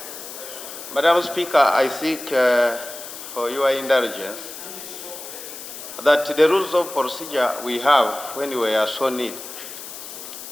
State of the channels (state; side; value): noise; left; hiss, 11 dB below the sound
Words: Madam Speaker, I seek for your indulgence that the rules of procedure we have when we are so need,